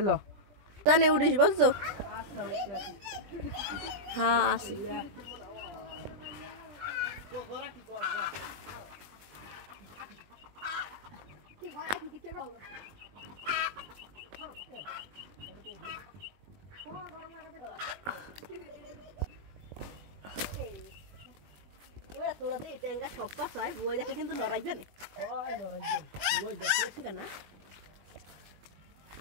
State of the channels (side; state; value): left; late; 20 ms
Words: ল জানে উড়িস বলছো আচ্ছা হ্যাঁ আসি এবারে তোরা দে ট্যাঙ্গা সব পাস হয় বই দেখে কিন্তু লড়াইবে না হয় লড়াইবে ওই দেখছিস কেন